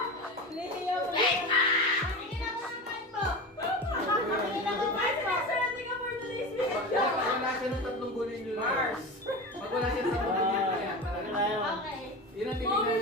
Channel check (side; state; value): both; normal; correlation 0.27